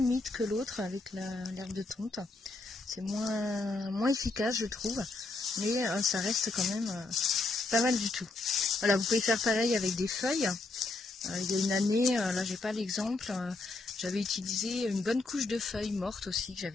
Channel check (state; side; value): quieter; right; 3.4 dB